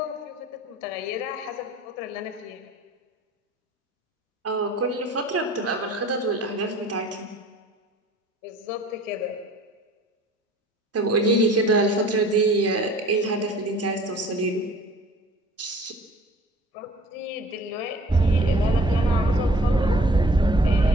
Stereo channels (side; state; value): both; normal; correlation 0.49